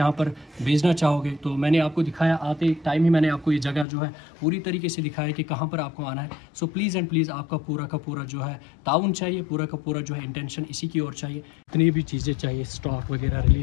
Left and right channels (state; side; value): drops out; right; at 3.9 s